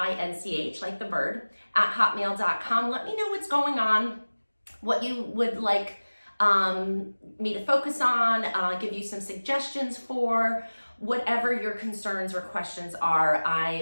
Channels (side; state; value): both; inverted; correlation -1.00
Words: like the bird, at hotmail.com. Let me know what's going on, what you would like me to focus on, give you some suggestions for whatever your concerns or questions are. I